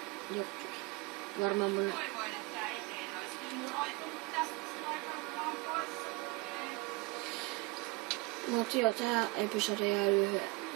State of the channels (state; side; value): quieter; left; 24.5 dB